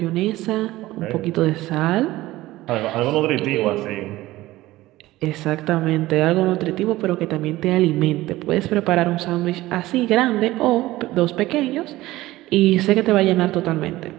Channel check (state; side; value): quieter; left; 17.3 dB